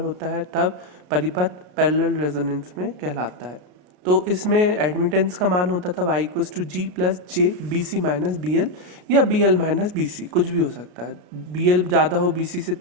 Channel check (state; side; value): late; left; 33 ms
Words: है तब परिपथ पैरेलल रेजोनेंस में कहलाता है। तो इसमें एडमिटेंस का मान होता था y equals to G plus J B C minus B L या B L minus B C, कुछ भी हो सकता है। बी एल ज़्यादा हो बी सी से